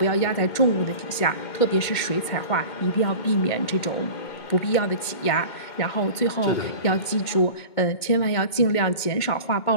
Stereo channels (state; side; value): late; right; 2.2 ms